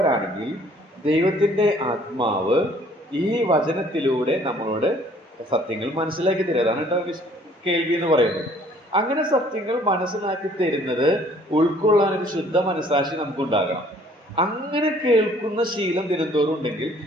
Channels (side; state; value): both; normal; correlation 0.58